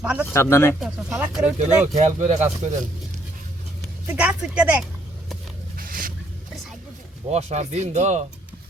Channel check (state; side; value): normal; both; correlation 0.68